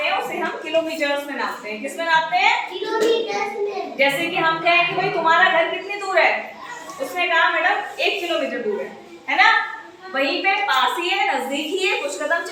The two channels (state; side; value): identical; both; correlation 1.00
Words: हैं उसे हम किलोमीटर्स में नापते हैं। किस में नापते हैं? किलोमीटर में। जैसे कि हम कहें कि भाई तुम्हारा घर कितनी दूर है, उसने कहा मैडम 1 किलोमीटर दूर है ना? वहीं पे पास ही है, नजदीक ही है, कुछ कदम